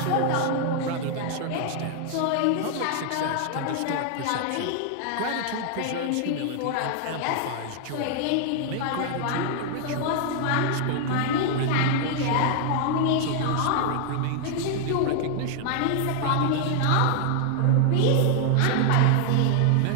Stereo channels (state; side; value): different; both; correlation 0.00